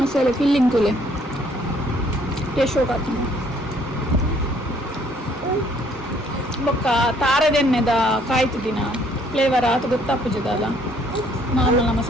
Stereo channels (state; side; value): normal; both; correlation 0.63